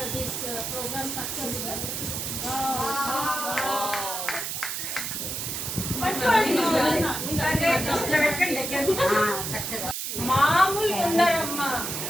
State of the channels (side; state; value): right; noise; hiss, 4 dB below the sound